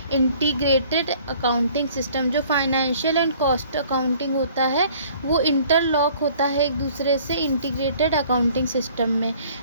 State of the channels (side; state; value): both; inverted; correlation -0.55